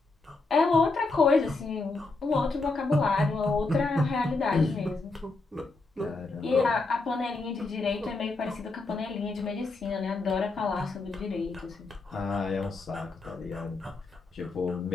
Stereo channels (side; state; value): right; quieter; 3.5 dB